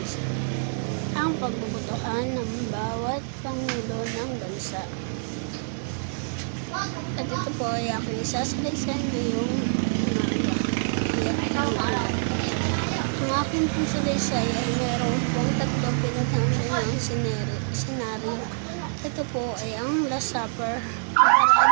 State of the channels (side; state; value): left; silent; 61 dB below the other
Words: Ang pagbubutuhan ng bawat Pangulo ng Bansa. At ito po ay aking isasalaysay ngayong umaga. Ang aking pong salaysay ay mayroon pong tatlong pinaghambalang senaryo. Ito po ay ang Last Supper, ang